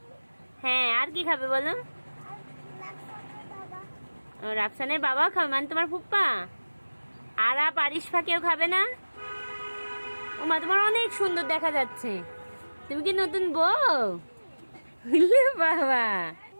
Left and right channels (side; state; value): both; inverted; correlation -1.00